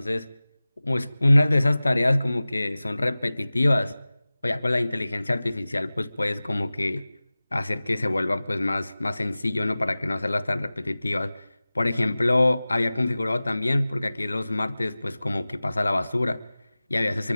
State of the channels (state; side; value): inverted; both; correlation -0.98